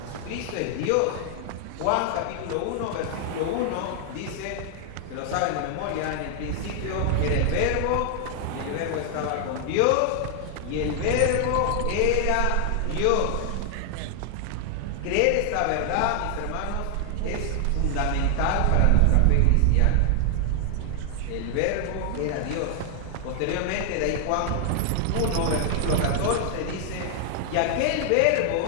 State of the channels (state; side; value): different; both; correlation 0.00